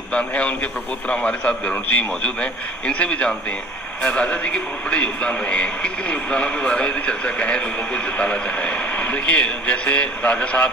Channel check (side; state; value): both; normal; correlation 0.48